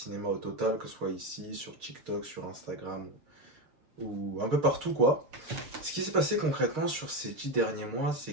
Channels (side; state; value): left; late; 6.5 ms